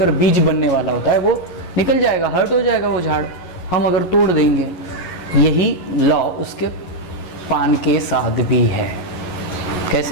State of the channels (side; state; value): right; late; 11 ms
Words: बीज बनने वाला होता है, वो निकल जाएगा, हर्ट हो जाएगा वो झाड़, हम अगर तोड़ देंगे। यही लॉ उसके पान के साथ भी है।